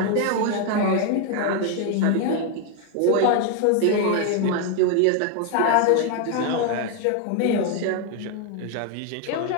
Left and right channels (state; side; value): different; both; correlation 0.01